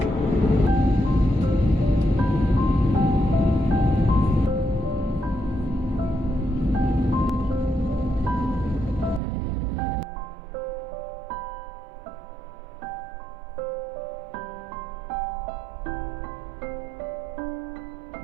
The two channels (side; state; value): left; drops out; at 9.2 s